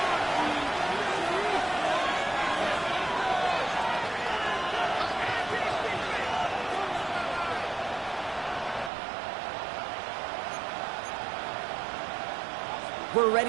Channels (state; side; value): drops out; left; at 8.9 s